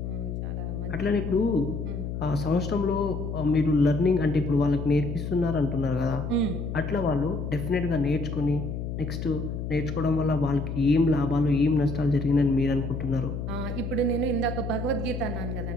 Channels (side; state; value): left; noise; hum, 5 dB below the sound